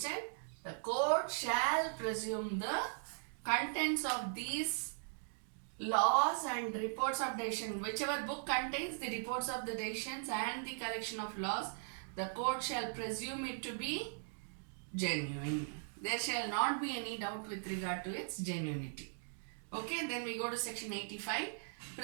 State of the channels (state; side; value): silent; left; digital silence